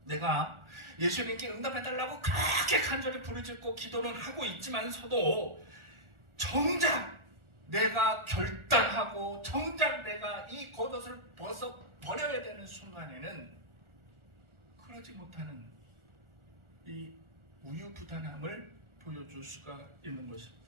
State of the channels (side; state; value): left; late; 1.4 ms